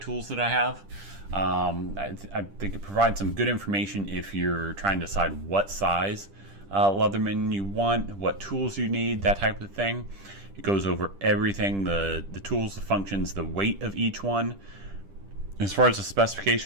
that I have. I think it provides some good information if you're trying to decide what size Leatherman you want, what tools you need, that type of thing. It goes over everything, the tools, the functions, the weight of each one. As far as the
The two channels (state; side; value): late; left; 10 ms